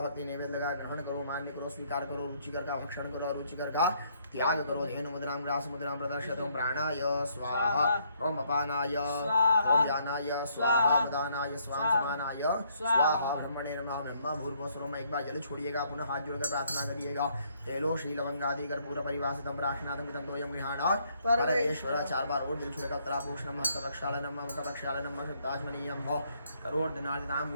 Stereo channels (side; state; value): both; inverted; correlation -0.69